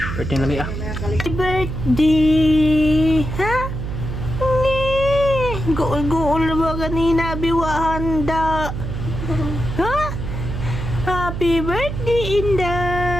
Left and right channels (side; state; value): right; noise; hum, 5 dB below the sound